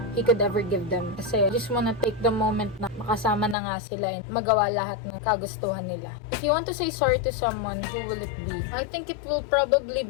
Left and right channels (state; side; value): drops out; right; at 3.6 s